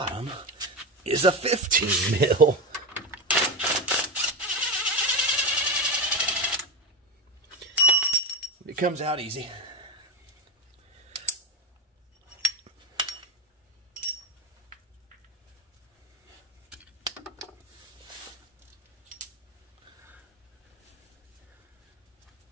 is a 15 mil. It comes out easy.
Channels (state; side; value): normal; both; correlation 0.17